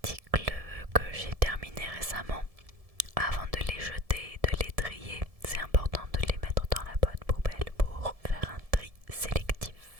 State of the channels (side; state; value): left; late; 1.7 ms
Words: que j'ai terminés récemment. Avant de les jeter, de les trier, c'est important de les mettre dans la bonne poubelle pour faire un tri sélectif.